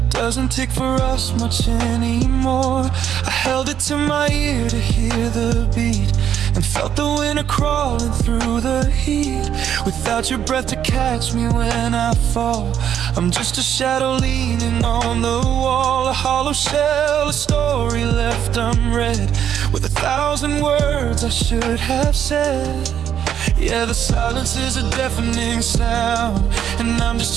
doesn't tick for us much anymore. I held it to my ear to hear the beat, and felt the winter crawling through the heat. Without your breath to catch me when I fall, I'm just a shadow leaning on the wall. A hollow shell, a story left unread, with 1,000 words I should have said. Yeah, the silence is a deafening sound, and I'm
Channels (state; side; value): quieter; left; 9.4 dB